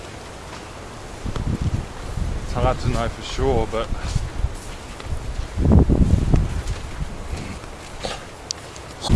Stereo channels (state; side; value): identical; both; correlation 1.00